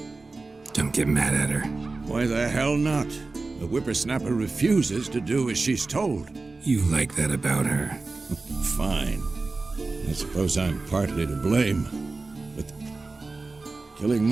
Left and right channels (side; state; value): left; quieter; 3.6 dB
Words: Don't get mad at her. Why the hell not? The whippersnapper refuses to do as she's told. You like that about her. Fine. I suppose I'm partly to blame. But killing